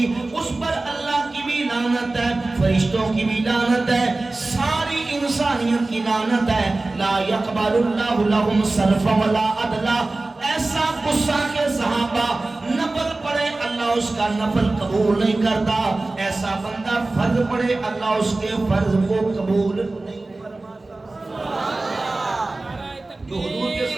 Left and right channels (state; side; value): quieter; left; 3.1 dB